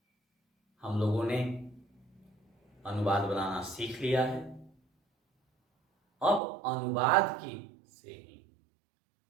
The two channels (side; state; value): left; drops out; at 6.4 s